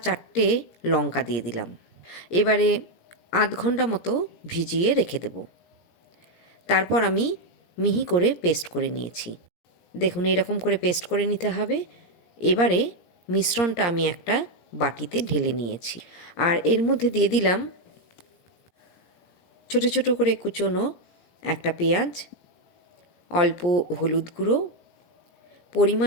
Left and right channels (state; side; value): late; right; 17 ms